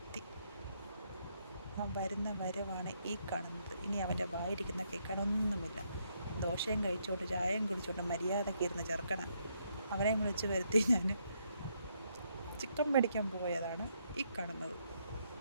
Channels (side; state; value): both; inverted; correlation -0.75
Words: എത്തി. ആ വരുന്ന വരവാണ് ഈ കാണുന്നത്. ഇനി അവൻ്റെ വായിരിക്കുന്ന കേൾക്കാനൊന്നുമില്ല. ദോശയും കഴിച്ചുകൊണ്ട് ചായയും കുടിച്ചുകൊണ്ട് മര്യാദയ്ക്ക് ഇരുന്ന് ചെറുക്കണം. അവനെ വിളിച്ച് വരുത്തി ഞാൻ ചിക്കൻ മേടിക്കാൻ പോയതാണ് ഈ കാണുന്നത്.